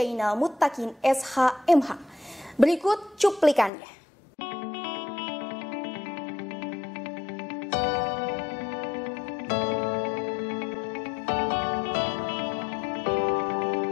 Muttaqin SH.MH. Berikut cuplikannya.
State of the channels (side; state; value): right; drops out; at 3.7 s